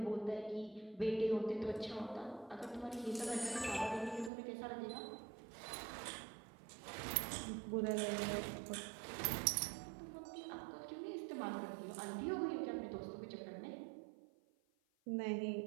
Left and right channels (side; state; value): left; drops out; at 4.3 s